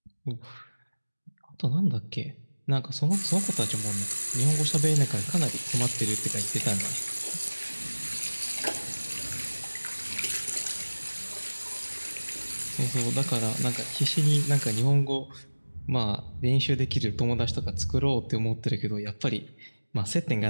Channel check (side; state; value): both; inverted; correlation -1.00